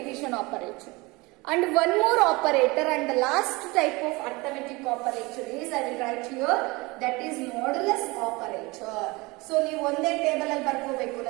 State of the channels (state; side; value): quieter; left; 24.0 dB